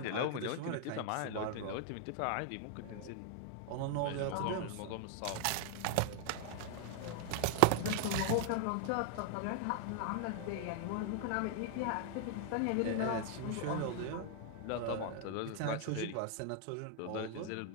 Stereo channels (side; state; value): both; different; correlation 0.00